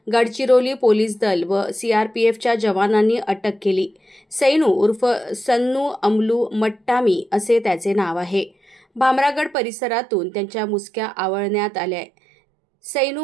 गडचिरोली पोलीस दल व सीआरपीएफच्या जवानांनी अटक केली। सैनू उर्फ सन्नू अमलू मट्टामी असे त्याचे नाव आहे। भामरागड परिसरातून त्यांच्या मुसक्या आवळण्यात आल्या।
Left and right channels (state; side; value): drops out; left; at 9.6 s